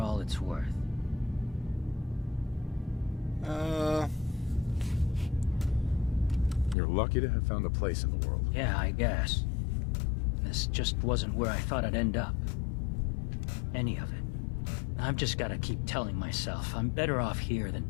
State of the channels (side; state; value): right; drops out; at 6.8 s